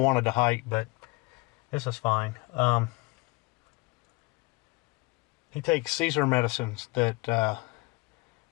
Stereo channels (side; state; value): right; quieter; 25.1 dB